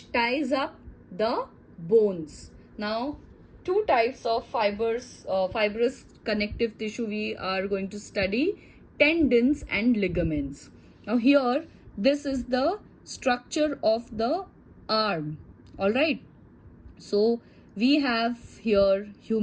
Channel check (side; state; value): both; identical; correlation 1.00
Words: ties up the bones. Now, two types of fibrous connective tissue we are going to study. tendons and ligaments. Now here, this is the structure of the arm. All right. So we have here